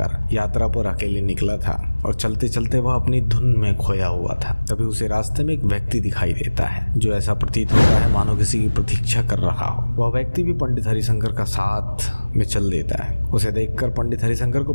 यात्रा पर अकेले निकला था और चलते चलते वह अपनी धुन में खोया हुआ था। तभी उसे रास्ते में एक व्यक्ति दिखाई देता है जो ऐसा प्रतीत होता है मानो किसी की प्रतीक्षा कर रहा हो। वह व्यक्ति भी पंडित हरिशंकर का साथ में चल देता है। उसे देखकर पंडित हरिशंकर को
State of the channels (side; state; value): both; inverted; correlation -1.00